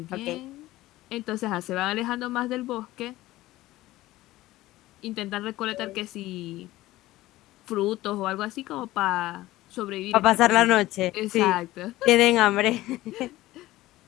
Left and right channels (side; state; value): right; quieter; 16.9 dB